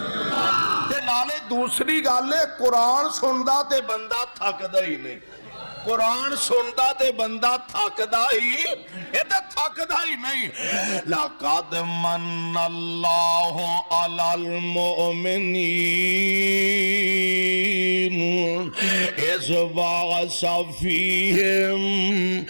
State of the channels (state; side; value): inverted; both; correlation -1.00